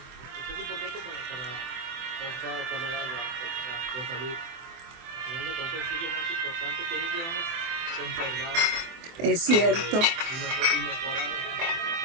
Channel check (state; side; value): late; left; 24 ms